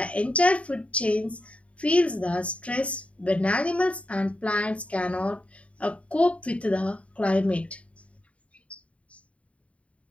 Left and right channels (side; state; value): right; late; 0.064 ms